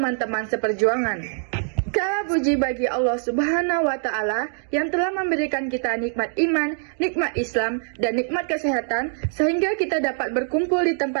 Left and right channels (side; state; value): left; silent; 63 dB below the other